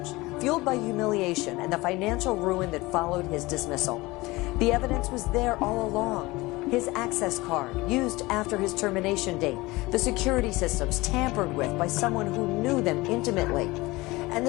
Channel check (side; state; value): right; quieter; 21.4 dB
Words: fueled by humiliation and the financial ruin that followed his dismissal. The evidence was there all along. His access card, used after his termination date, the security systems tampered with by someone who knew them intimately, and